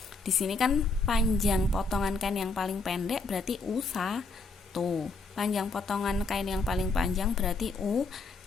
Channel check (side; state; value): right; quieter; 3.7 dB